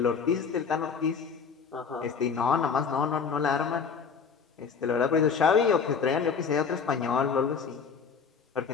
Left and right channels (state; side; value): quieter; right; 5.9 dB